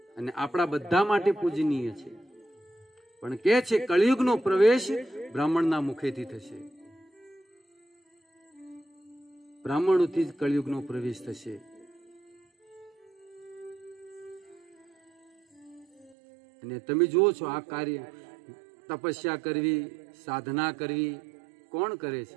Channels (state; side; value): drops out; left; at 16.2 s